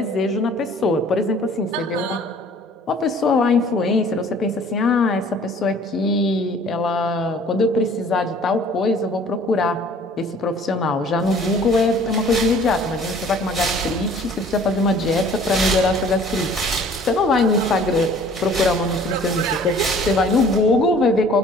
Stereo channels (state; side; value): normal; both; correlation 0.52